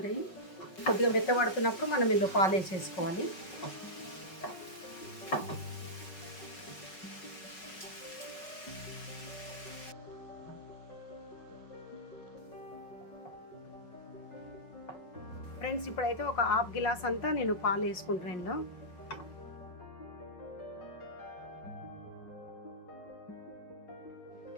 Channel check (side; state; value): right; late; 5.3 ms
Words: కొద్దిగా మెత్తబడుతున్నప్పుడు మనం ఇందులో పాలు వేసేసుకోవాలి. ఫ్రెండ్స్, ఇప్పుడైతే ఒక 1/2 గిలాస్ అంతా నేను పాలు వేసుకుంటాను. ఇందులో